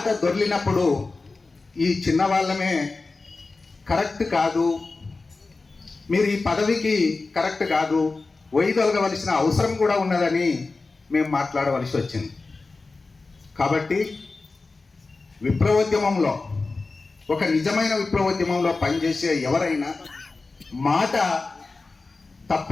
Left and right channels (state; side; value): quieter; right; 3.7 dB